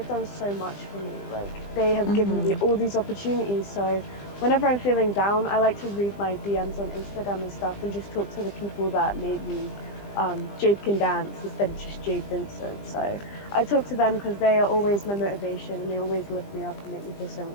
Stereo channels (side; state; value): right; late; 20 ms